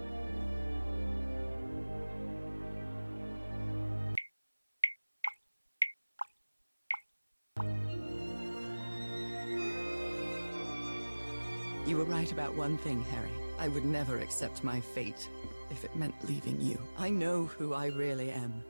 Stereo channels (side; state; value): both; inverted; correlation -1.00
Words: You were right about one thing, Harry. I would never accept my fate if it meant leaving you. I know who I really am.